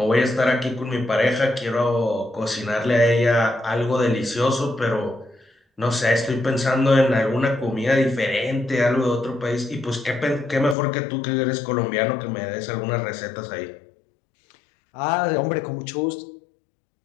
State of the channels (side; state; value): right; drops out; at 10.8 s